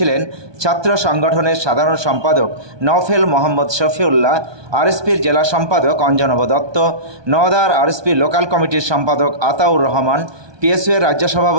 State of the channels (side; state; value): left; late; 1.2 ms